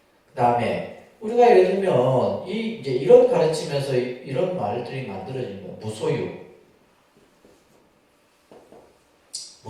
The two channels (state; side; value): identical; both; correlation 1.00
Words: 그 다음에 우리가 예를 들면 이제 이런 가르치면서 이런 말들이 만들어진 거예요. 무소유.